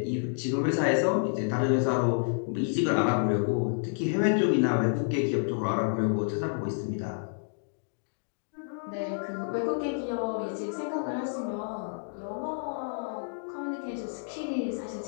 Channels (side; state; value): right; silent; digital silence